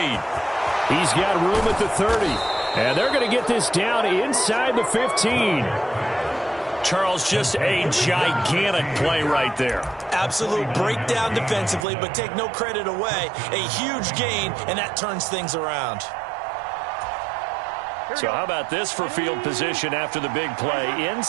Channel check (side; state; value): left; drops out; at 11.9 s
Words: He's got room at the 30. And they're going to get this down inside the 15. Charles, just a gigantic play right there. Absolute breakdown defensively, but take no credit away. A huge gain, and that turns things around. So how about this for field position after the big play?